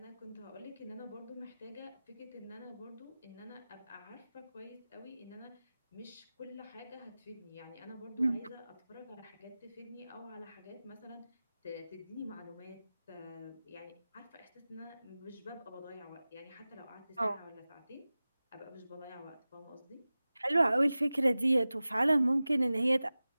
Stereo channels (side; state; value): both; inverted; correlation -0.97